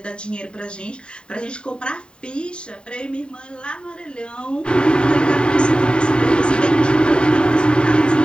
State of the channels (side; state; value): right; late; 0.050 ms